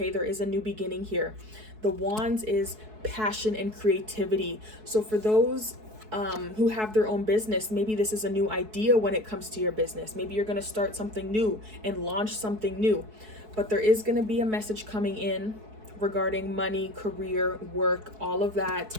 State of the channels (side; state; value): left; late; 4.6 ms